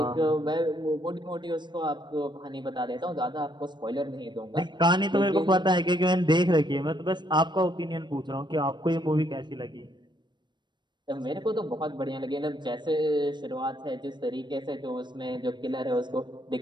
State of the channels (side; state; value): left; late; 0.22 ms